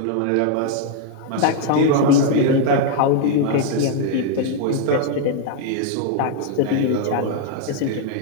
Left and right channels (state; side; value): different; both; correlation 0.00